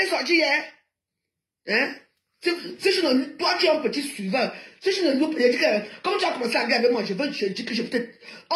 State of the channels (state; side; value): identical; both; correlation 1.00